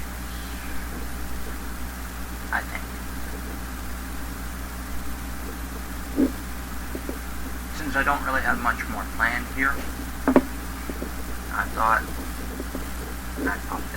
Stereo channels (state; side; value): identical; both; correlation 1.00